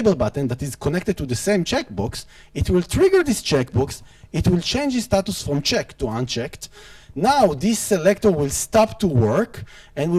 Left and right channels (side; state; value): both; identical; correlation 1.00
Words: button that is connected to the same checkbox, it will trigger this checkbox, it will change its status from checked to unchecked. Now this selector will stop to work, and we